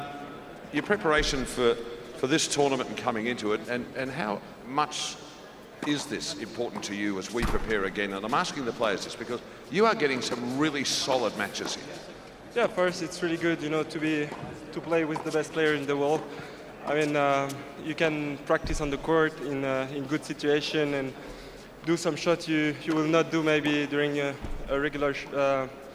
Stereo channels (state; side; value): identical; both; correlation 1.00